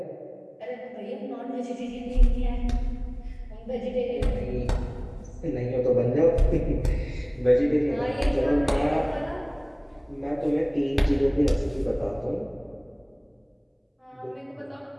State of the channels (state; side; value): identical; both; correlation 1.00